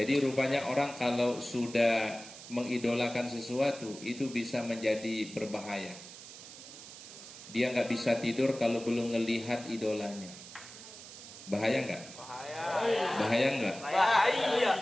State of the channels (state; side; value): noise; right; hiss, 15 dB below the sound